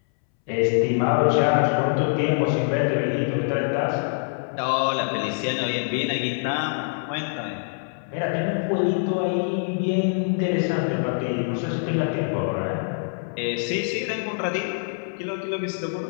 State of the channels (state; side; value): silent; right; 62 dB below the other